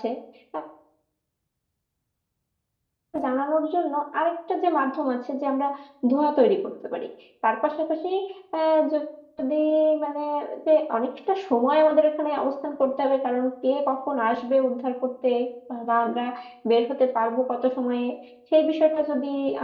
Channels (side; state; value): both; identical; correlation 1.00